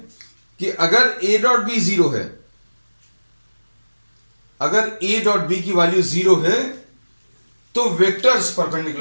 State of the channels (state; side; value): inverted; both; correlation -1.00